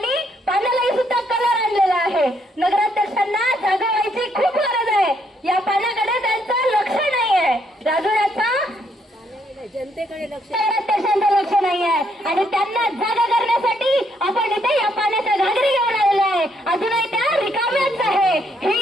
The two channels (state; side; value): normal; both; correlation 0.72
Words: पाण्यालाही सुद्धा कलर आणलेला आहे। नगराध्यक्षांना जागा व्हायची खूप गरज आहे। या पाण्याकडे त्यांचं लक्ष नाही आहे। राजुऱ्याचा जनतेकडे लक्ष नाही आहे आणि त्यांना